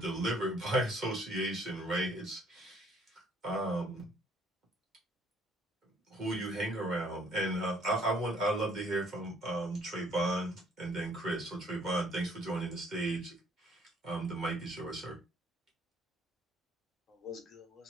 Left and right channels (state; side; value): normal; both; correlation 0.62